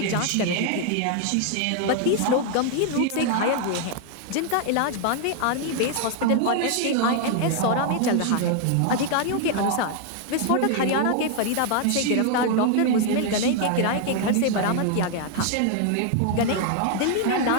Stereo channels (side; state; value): both; different; correlation 0.00